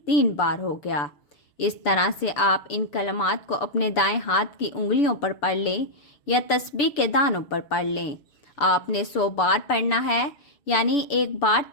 تین بار ہو گیا۔ اس طرح سے آپ ان کلمات کو اپنے دائیں ہاتھ کی انگلیوں پر پڑھ لیں یا تسبیح کے دانوں پر پڑھ لیں۔ آپ نے 100 بار پڑھنا ہے، یعنی ایک بار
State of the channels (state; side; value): late; right; 6.9 ms